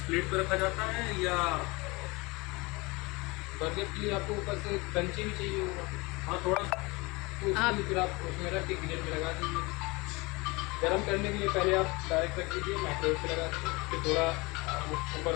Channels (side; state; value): right; quieter; 25.1 dB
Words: प्लेट पे रखा जाता है, या बर्गर के लिए आपको ऊपर से क्रंची भी चाहिए होगा, हाँ थोड़ा, तो उसके लिए फिर आप उसमें रख के ग्रिल में लगा दीजिए। गर्म करने के लिए पहले आप डायरेक्ट रख दीजिए, माइक्रोवेव पे लगा दीजिए, फिर थोड़ा